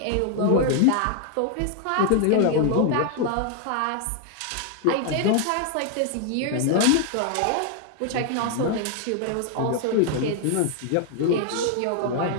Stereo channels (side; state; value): both; different; correlation 0.00